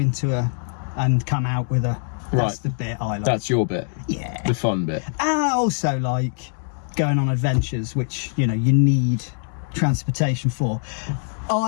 and come out with a. That's the bit I like. That's your bit. Yeah. The fun bit. And I also like going on adventures, which, you know, you need transportation for.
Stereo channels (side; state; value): right; silent; digital silence